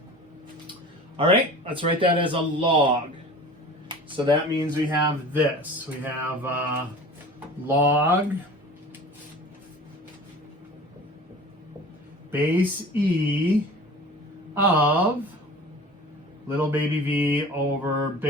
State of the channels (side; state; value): both; normal; correlation 0.40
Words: All right, let's write that as a log. So that means we have this. We have log base E of little baby v over